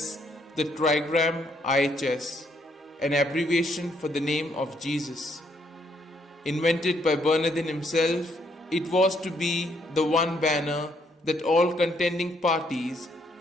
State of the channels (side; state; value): both; normal; correlation 0.71